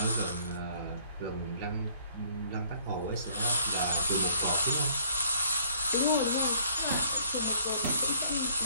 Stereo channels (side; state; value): both; inverted; correlation -0.60